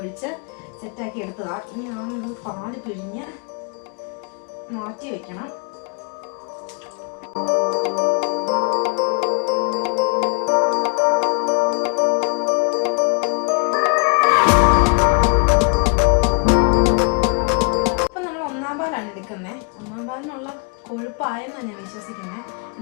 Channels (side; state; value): right; quieter; 35.9 dB